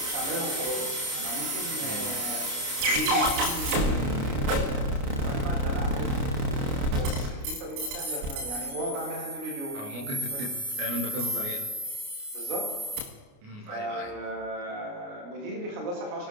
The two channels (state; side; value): late; left; 29 ms